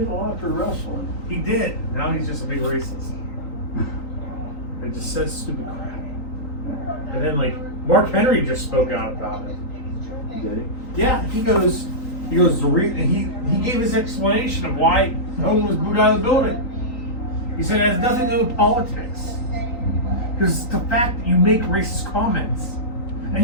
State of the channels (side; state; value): right; late; 3.9 ms